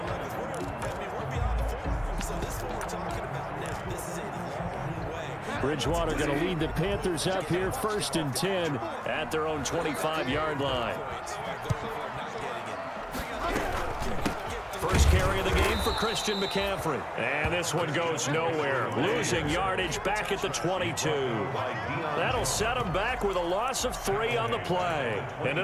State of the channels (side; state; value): both; identical; correlation 1.00